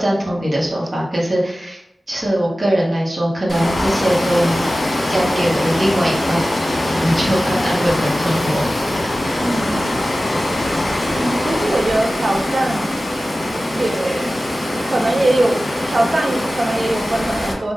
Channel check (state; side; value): normal; both; correlation 0.95